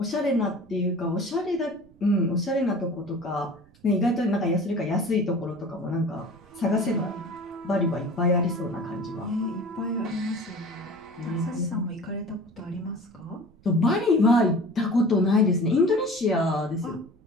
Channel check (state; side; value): noise; right; rumble, 27 dB below the sound